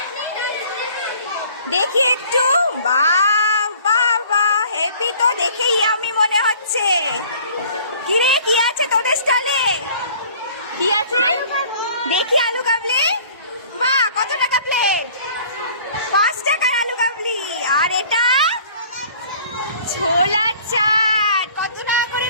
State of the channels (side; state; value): both; inverted; correlation -0.51